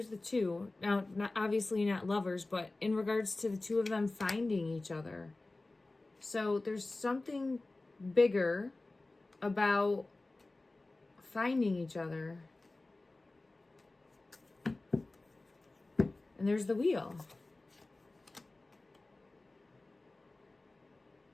the two. Now, obviously not lovers, but in regards to the two of them finding each other. So there's something bigger about finding each other. And there's the wheel.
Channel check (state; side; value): quieter; right; 3.1 dB